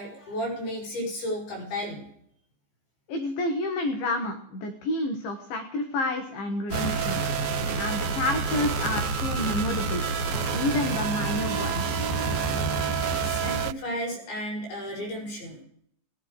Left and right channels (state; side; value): late; right; 15 ms